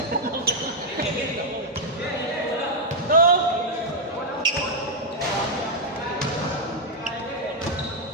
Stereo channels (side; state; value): both; normal; correlation -0.03